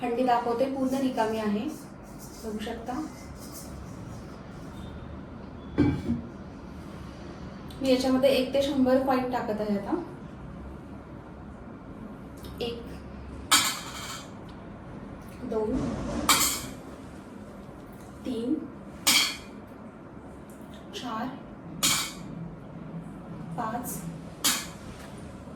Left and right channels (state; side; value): identical; both; correlation 1.00